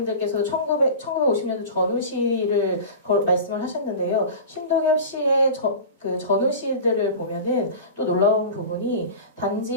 1950년도 전후시를 말씀을 하셨는데요. 신동엽 씨의 그 전후시들을 보면은 또 놀라운 부분이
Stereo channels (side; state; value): both; inverted; correlation -0.33